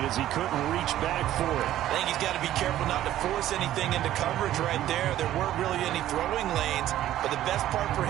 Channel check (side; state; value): left; quieter; 13.1 dB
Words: as he couldn't reach back for it. I think he's got to be careful not to force anything into coverage right there. There weren't really any throwing lanes, but the best part for